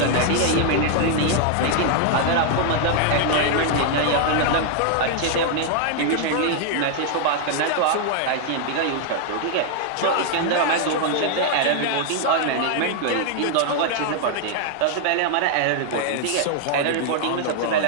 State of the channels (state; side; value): different; both; correlation 0.00